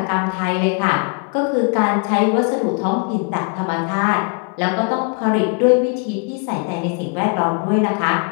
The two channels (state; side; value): quieter; right; 35.7 dB